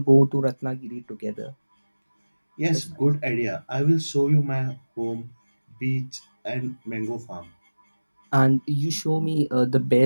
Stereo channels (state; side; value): inverted; both; correlation -1.00